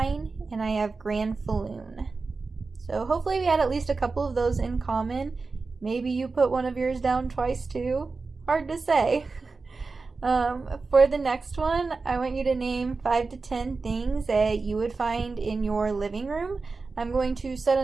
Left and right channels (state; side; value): quieter; left; 4.1 dB